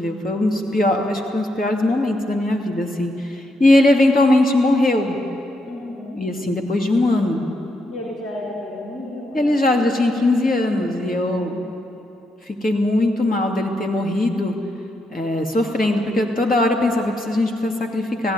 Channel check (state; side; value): normal; both; correlation 0.80